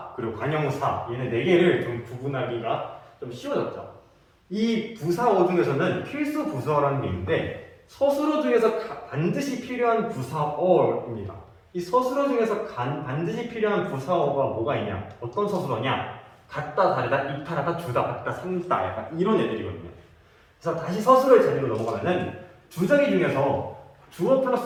그리고 관용사 얘네 4개를 좀 구분하기가 좀 쉬워졌죠. 이 부사어 중에서는 필수 부사어라는 게 있는데 서술어 중에서 반드시 필요한 부사어입니다. 이 서술어 중에서 반드시 필요한 부사어가 뭐가 있냐? 어떤 서술어냐? 같다, 다르다, 이탈하다, 주다, 같다, 산다 약간 이런 애들이거든요. 그래서 다시 서술어의 재미로 넘어가면은 주저기 중에서 주어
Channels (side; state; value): both; identical; correlation 1.00